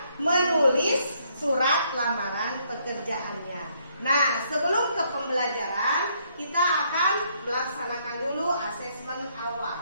menulis surat lamaran pekerjaannya. Nah, sebelum ke pembelajaran, kita akan melaksanakan dulu asesmen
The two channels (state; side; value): inverted; both; correlation -0.70